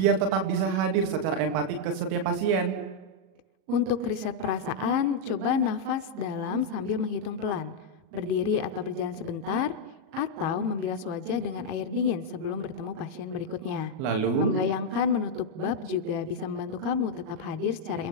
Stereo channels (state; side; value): late; left; 38 ms